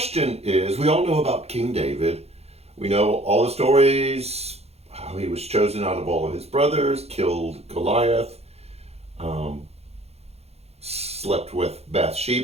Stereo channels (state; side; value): late; left; 0.30 ms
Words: is, we all know about King David. We know all the stories, how he was chosen out of all of his brothers, killed Goliath, um, slept with